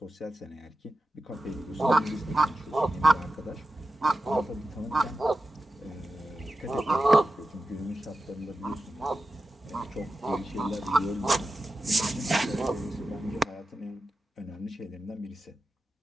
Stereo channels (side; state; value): both; normal; correlation 0.92